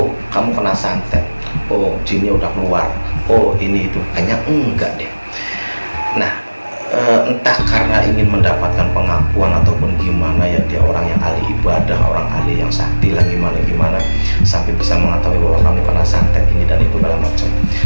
kamu kena santet, oh jinnya udah keluar, oh ini itu, kayaknya enggak deh. Nah, entah karena ingin mendapatkan pengakuan ataupun gimana ya, dia orang yang ahli ibadah, orang ahli yang sakti lah, gimana sampai bisa mengetahui bahwa kamu kena santet ini dan itu segala macam.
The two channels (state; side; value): inverted; both; correlation -1.00